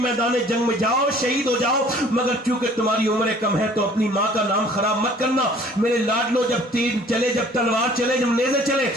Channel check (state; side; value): normal; both; correlation 0.53